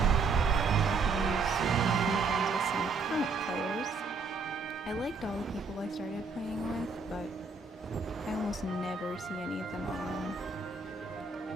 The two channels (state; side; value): quieter; left; 4.4 dB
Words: So I could use making friends with some current players. I liked all the people I started playing with, but I almost never see any of them on.